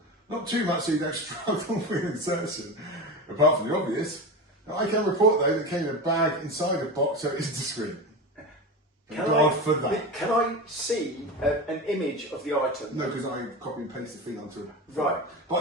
Not too much so you don't struggle with insertion, apart from the obvious. Now, I can report though that it came in a bag inside a box, so it is discreet. For that. Can I see an image of the item? No, because I copy and paste the thing onto it. Right.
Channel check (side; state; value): both; normal; correlation 0.24